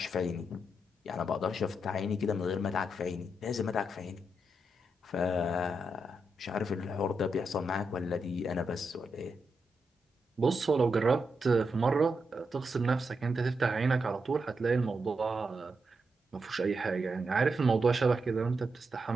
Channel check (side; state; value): both; normal; correlation 0.84